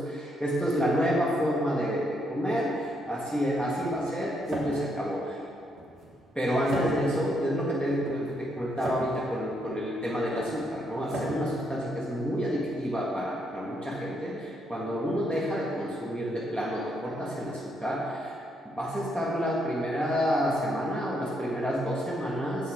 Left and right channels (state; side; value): normal; both; correlation 0.75